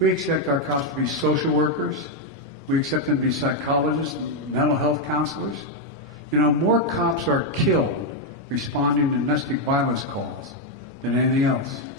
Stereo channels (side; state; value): both; normal; correlation 0.01